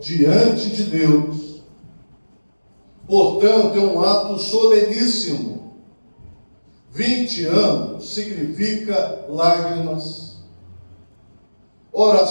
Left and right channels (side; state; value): both; inverted; correlation -1.00